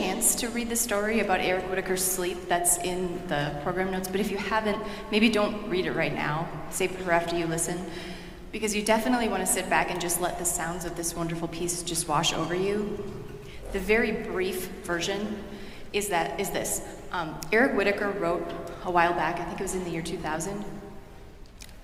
to read the story about Eric Whitacre's sleep that's in the program notes, but if you haven't, maybe don't read it right now. Save it for after you listen, because you definitely want to sit back and just let the sounds of this wonderful piece just wash over you. The very brief version is this. Eric Whitacre wrote a while back, I think it was in the year 2000.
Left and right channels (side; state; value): both; identical; correlation 1.00